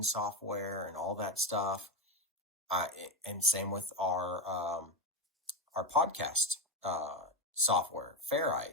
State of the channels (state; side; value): normal; both; correlation 0.14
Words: software and all that stuff. And same with our podcast software,